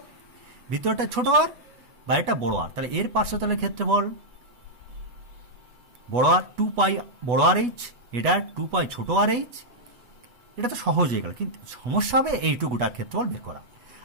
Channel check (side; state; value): left; late; 8.1 ms